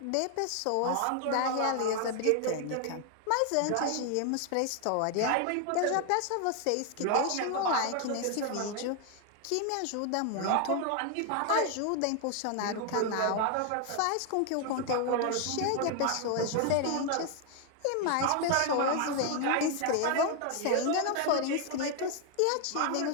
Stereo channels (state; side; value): different; both; correlation 0.00